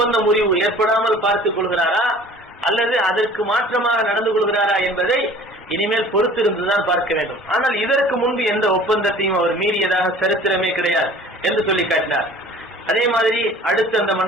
முறிவு ஏற்படாமல் பார்த்துக் கொள்கிறாரா அல்லது அதற்கு மாற்றமாக நடந்து கொள்கிறாரா என்பதை இனிமேல் பொறுத்திருந்துதான் பார்க்க வேண்டும். ஆனால் இதற்கு முன்பு எந்த ஒப்பந்தத்தையும் அவர் மீறியதாக சரித்திரமே கிடையாது என்று சொல்லி காட்டினார். அதே மாதிரி அடுத்து அந்த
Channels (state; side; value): normal; both; correlation 0.47